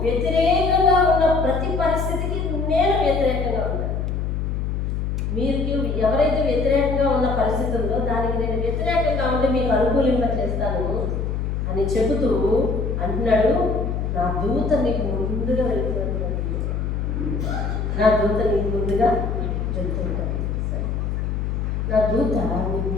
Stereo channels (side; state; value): left; noise; hum, 1 dB below the sound